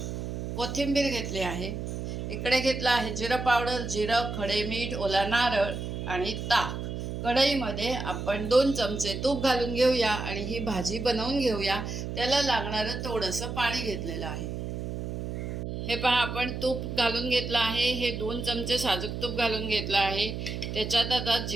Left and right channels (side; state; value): right; noise; hum, 5 dB below the sound